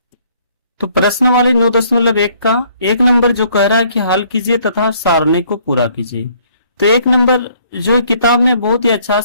तो प्रश्न वाले 9.1 का 1 नंबर जो कह रहा है कि हल कीजिए तथा सारणी को पूरा कीजिए। तो 1 नंबर जो है किताब में बहुत ही अच्छा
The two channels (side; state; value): both; inverted; correlation -0.62